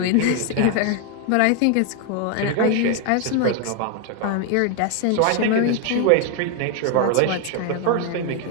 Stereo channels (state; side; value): different; both; correlation 0.01